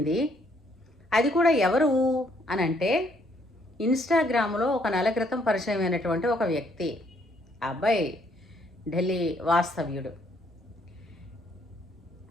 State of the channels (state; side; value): normal; both; correlation 0.68